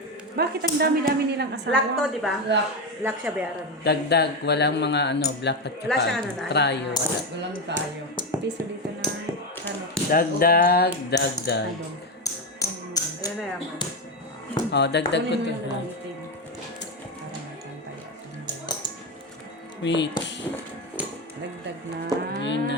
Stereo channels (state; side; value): normal; both; correlation 0.12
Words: Bakit ang dami-dami nilang asawa? Black to, di ba? Black siya bayaran. Dagdag, walang mga ano, black at Wala siyang ano saka na. trial. Wala. Walang tayo. Piso dito na. Ano? Dagdag, dagdag. Wala Yan na yaman. Oh, dagdag ko to. Ha? Wait. Dagdag na. Yun